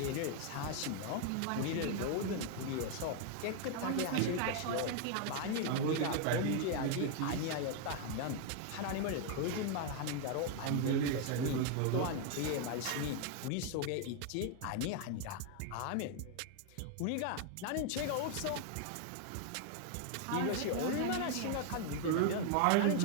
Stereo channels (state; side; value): different; both; correlation 0.00